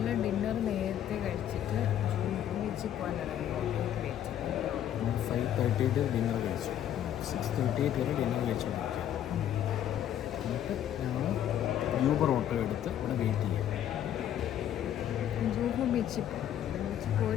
ഡിന്നർ നേരത്തെ കഴിച്ചിട്ട് ബീച്ചിൽ പോകാനിറങ്ങി. 5:30 ഡിന്നർ കഴിച്ചു, 6:38 വരെ ഡിന്നർ കഴിച്ചു. എന്നിട്ട് ഞങ്ങൾ യൂബർ ഓട്ടോ എടുത്ത് ഇവിടെ വെയിറ്റ് ചെയ്യാം. ജൂഹു ബീച്ചിൽ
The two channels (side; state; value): right; quieter; 10.7 dB